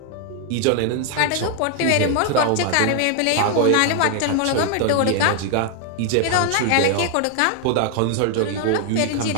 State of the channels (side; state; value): both; different; correlation 0.00